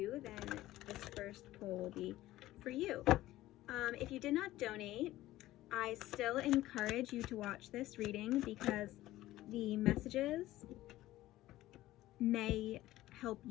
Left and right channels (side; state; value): right; quieter; 15.8 dB